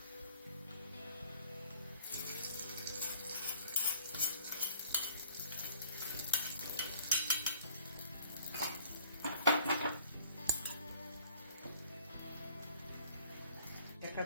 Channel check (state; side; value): inverted; both; correlation -0.54